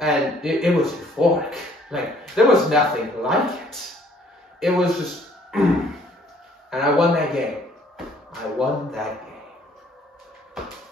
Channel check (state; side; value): normal; both; correlation 0.61